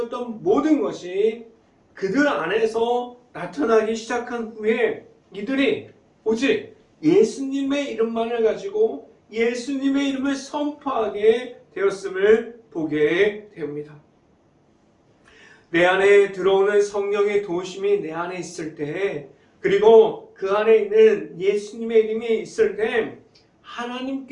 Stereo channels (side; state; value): both; identical; correlation 1.00